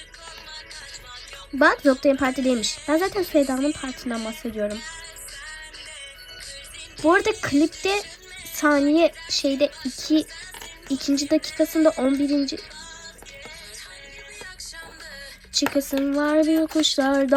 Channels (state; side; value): identical; both; correlation 1.00